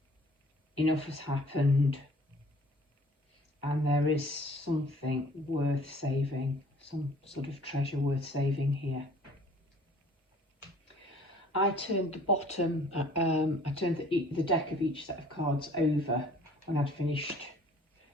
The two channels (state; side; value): normal; both; correlation 0.54